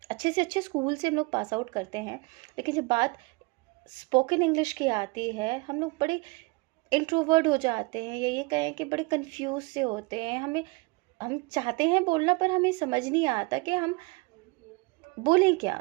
अच्छे से अच्छे स्कूल से हम लोग पास आउट करते हैं, लेकिन जब बात स्पोकन इंग्लिश की आती है हम लोग बड़े इंट्रोवर्ट हो जाते हैं, या ये कहें कि बड़े कंफ्यूज से होते हैं. हम चाहते हैं बोलना, पर हमें समझ नहीं आता कि हम बोलें क्या,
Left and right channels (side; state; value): left; quieter; 26.2 dB